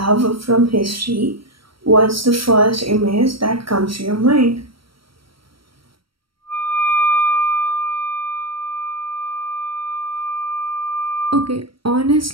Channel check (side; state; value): left; late; 0.74 ms